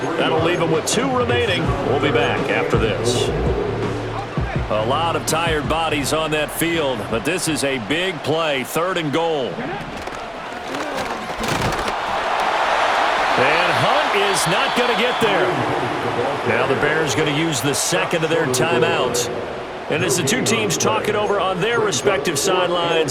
That'll leave them with 2 remaining. We'll be back after this. A lot of tired bodies on that field, but this is a big play, third and goal. And Hunt is not going to get there. Now the Bears going to use the second of their timeouts. And as the two teams talk it over on their respective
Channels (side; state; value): both; identical; correlation 1.00